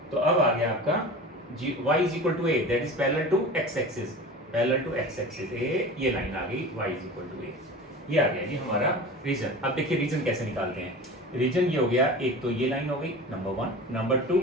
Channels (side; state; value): both; normal; correlation 0.35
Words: तो अब आ गया आपका y is equal to a, that is parallel to x axis, a, ये लाइन आ गई y is equal to a। ये आ गया जी हमारा रीजन। अब देखिए रीजन कैसे निकालते हैं। रीजन ये हो गया, एक तो ये लाइन हो गई नंबर 1, नंबर 2